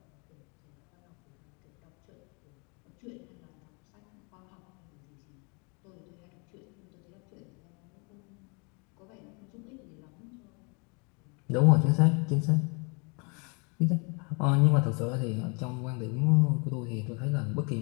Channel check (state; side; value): quieter; right; 33.2 dB